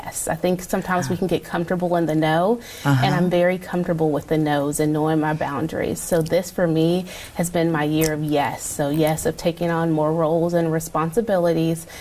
I think sometimes we can get comfortable in the no, and I'm very comfortable with the no's and knowing my boundaries. So this for me has been my year of yes. So yes, of taking on more roles and responsibilities.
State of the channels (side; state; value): both; identical; correlation 1.00